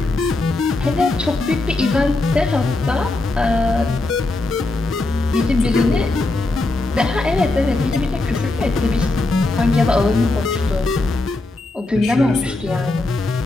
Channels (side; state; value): right; quieter; 3.0 dB